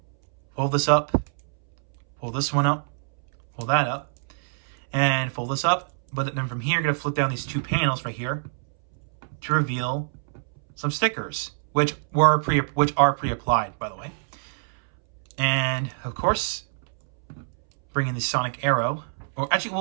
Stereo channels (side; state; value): left; silent; 62 dB below the other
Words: fold this up. Pull this one up, pull that up, and fold this up. But then from here, you're going to flip down these 2 panels right here to reveal some stickers, which are pre-applied, by the way. And of course, bring in the Sonic Arrow. Or actually,